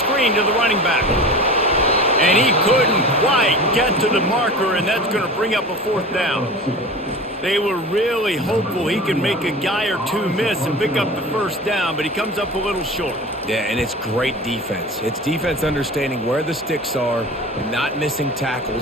to the running back. And he couldn't quite get to the marker, and that's going to bring up a 4th down. They were really hopeful he could make a guy or two miss and pick up the 1st down, but he comes up a little short. Yeah, and it's great defense. It's defense understanding where the sticks are, not missing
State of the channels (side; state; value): both; normal; correlation 0.34